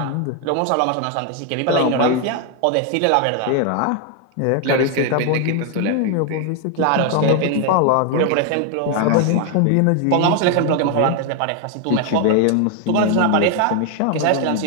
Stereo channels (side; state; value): both; different; correlation 0.01